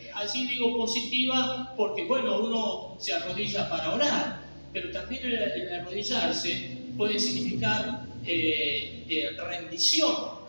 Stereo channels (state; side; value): inverted; both; correlation -1.00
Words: así digo, positiva, porque bueno, uno se arrodilla para orar, pero también el arrodillarse puede significar rendición,